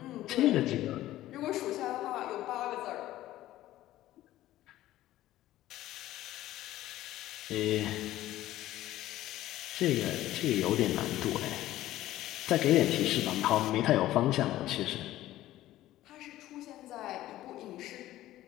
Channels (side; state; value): right; quieter; 14.8 dB